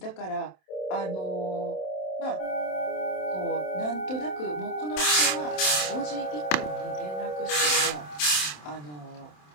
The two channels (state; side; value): late; right; 27 ms